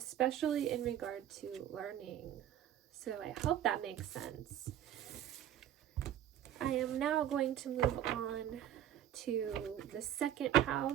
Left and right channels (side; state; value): left; quieter; 11.0 dB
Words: in regard to learning. So I hope that makes sense. I am now going to move on to the second